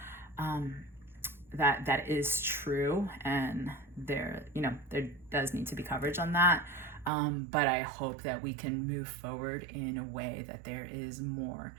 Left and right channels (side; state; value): left; drops out; at 7.1 s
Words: That is true, and there does need to be coverage on that. But I hope that we can move forward in a way that there is more